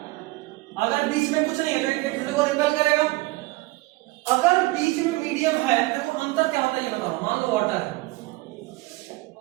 अगर बीच में कुछ नहीं है तो एक दूसरे को रिपेल करेगा। अगर बीच में मीडियम है तो अंतर क्या होता है ये बता रहा हूं। मान लो वाटर है,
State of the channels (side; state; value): left; quieter; 21.6 dB